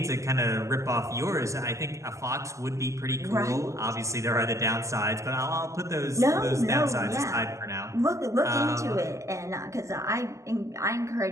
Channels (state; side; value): late; left; 0.15 ms